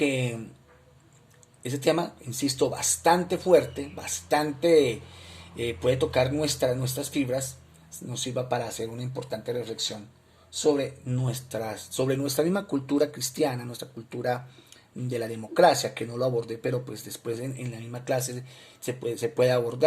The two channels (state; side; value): identical; both; correlation 1.00